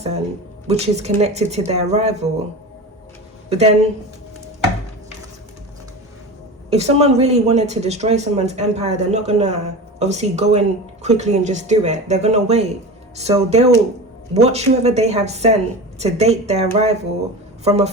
which is connected to their rival. But then if someone really wanted to destroy someone's empire, they're not gonna obviously go in quickly and just do it. They're gonna wait. So they'll watch whoever they have sent to date their rival from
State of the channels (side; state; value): both; normal; correlation 0.29